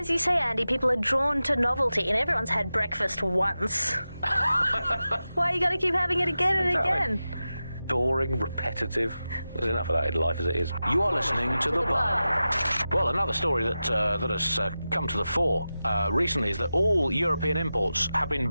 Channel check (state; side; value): inverted; both; correlation -0.93